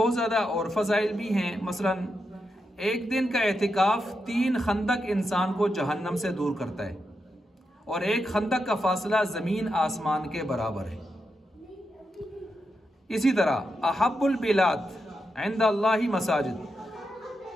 ज़्यादा और फ़ज़ाइल भी हैं। मसलन एक दिन का एतिकाफ़ 3 खंदक इंसान को जहन्नम से दूर करता है, और एक खंदक का फासला ज़मीन आसमान के बराबर है। इसी तरह अहब्बुल बिलाद इंदल्लाहि मसाजिद,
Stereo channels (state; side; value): normal; both; correlation 0.86